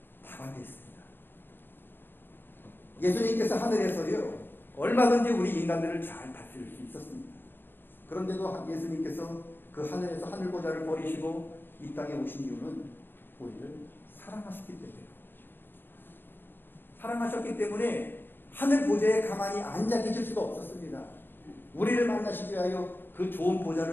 다 반대했습니다. 예수님께서 하늘에서요 얼마든지 우리 인간들을 잘 다스릴 수 있었습니다. 그런데도 예수님께서 그 하늘에서 하늘 보좌를 버리시고 이 땅에 오신 이유는 우리를 사랑하셨기 때문이에요. 사랑하셨기 때문에 하늘 보좌에 가만히 앉아 계실 수가 없었습니다. 우리를 만나시기 위하여 그 좋은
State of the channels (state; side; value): late; right; 0.097 ms